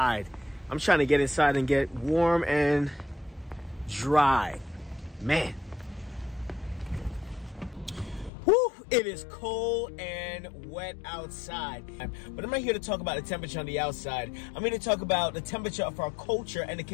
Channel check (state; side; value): drops out; right; at 8.3 s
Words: I'm trying to get inside and get warm and dry. Man. Woo! It is cold and wet outside. But I'm not here to talk about the temperature on the outside. I'm here to talk about the temperature of our culture and the